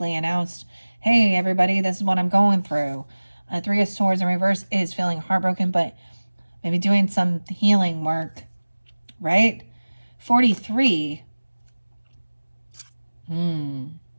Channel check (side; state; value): both; inverted; correlation -1.00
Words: announced. Hey, everybody, this is what I'm going through. 3 of Swords in reverse is feeling heartbroken, but maybe doing some healing work, right? 43.